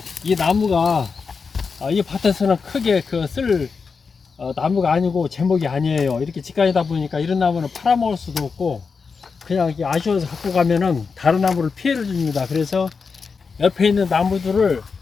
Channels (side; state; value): right; quieter; 5.2 dB